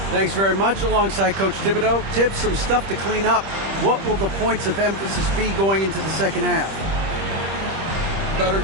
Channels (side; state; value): left; late; 25 ms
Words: Thanks very much. Alongside Coach Thibodeau. Tibbs, some stuff to clean up. What will the points of emphasis be going into the second half? Better